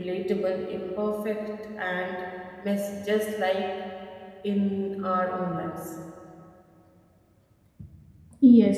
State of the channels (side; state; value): both; identical; correlation 1.00